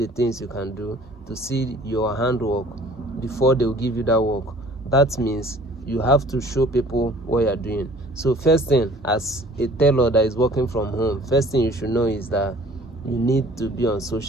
things you can do, to see your handwork before they'll give you that work. That means you have to show people what you're doing. So first thing, as a tailor that is working from home, first thing you should know is that you need to be on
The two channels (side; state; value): both; normal; correlation 0.52